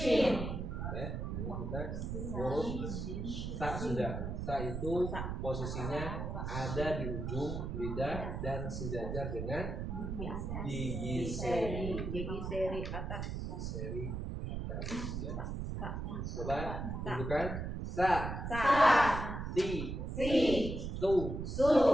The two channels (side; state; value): right; noise; rumble, 4 dB below the sound